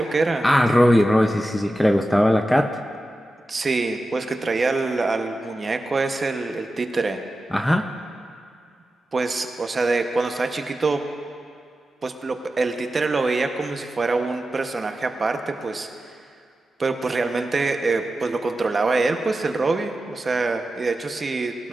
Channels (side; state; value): both; normal; correlation 0.93